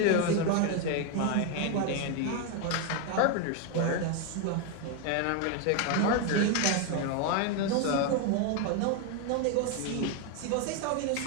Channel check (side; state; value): both; different; correlation 0.01